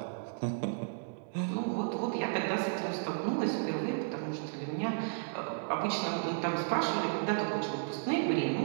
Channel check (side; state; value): left; silent; digital silence